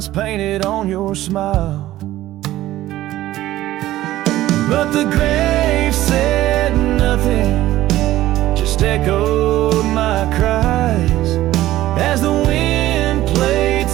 painted on your smile. But the grave said nothing, just echoed my cries, as the wind played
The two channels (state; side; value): quieter; left; 15.0 dB